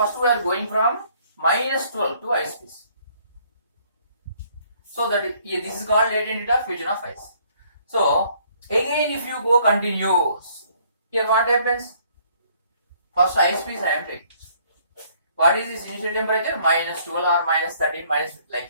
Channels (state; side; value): inverted; both; correlation -0.63